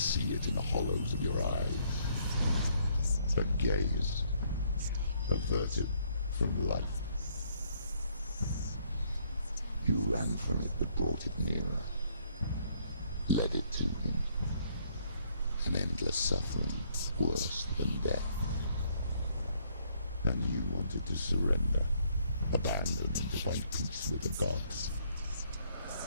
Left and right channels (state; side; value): inverted; both; correlation -0.67